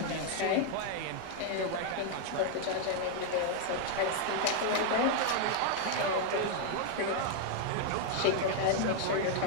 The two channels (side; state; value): both; different; correlation 0.00